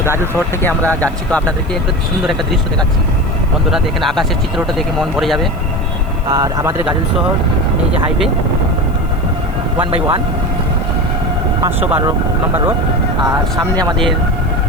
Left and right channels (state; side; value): noise; left; hiss, 28 dB below the sound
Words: গাজল শহর থেকে আমরা যাচ্ছি, তো আপনাদেরকে একটু সুন্দর একটা দৃশ্য দেখাচ্ছি। বন্ধুরা দেখেন, আকাশের চিত্রটা দেখে মন ভরে যাবে। আর আমাদের গাজল শহর, এই যে হাইওয়ে 1/1 512 নম্বর রোড, আর সামনে আমাদের